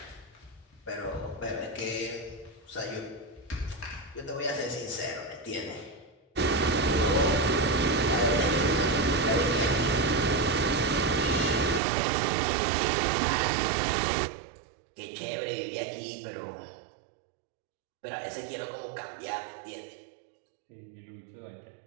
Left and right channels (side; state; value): left; drops out; at 11.8 s